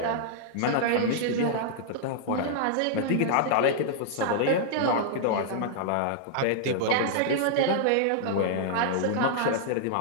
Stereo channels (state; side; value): different; both; correlation -0.01